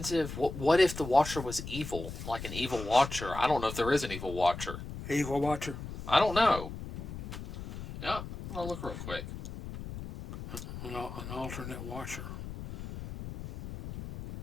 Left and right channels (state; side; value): noise; left; rumble, 9 dB below the sound